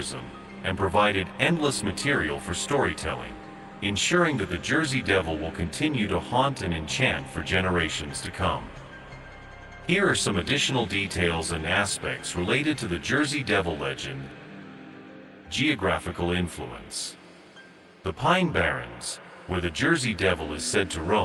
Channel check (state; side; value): identical; both; correlation 1.00